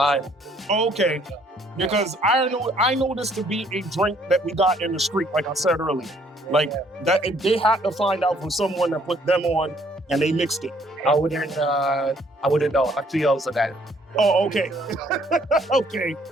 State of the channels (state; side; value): normal; both; correlation 0.64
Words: Okay. Because I know this to be a drink that we got in the street, like I said earlier. Like that, they had to find out from someone that put them on, and they mixed it. I wouldn't know. I'm too young for that. Oh, okay. Okay.